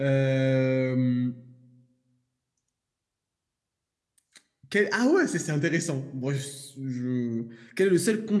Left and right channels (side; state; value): both; identical; correlation 1.00